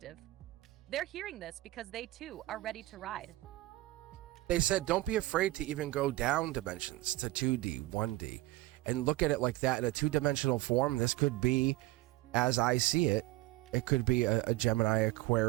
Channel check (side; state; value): left; quieter; 18.8 dB